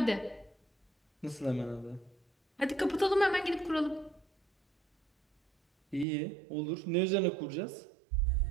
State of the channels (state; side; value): drops out; left; at 6.1 s